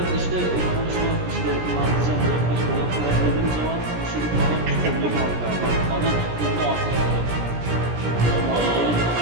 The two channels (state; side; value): late; left; 17 ms